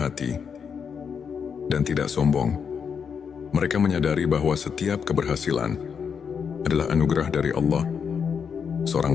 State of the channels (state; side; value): quieter; right; 6.7 dB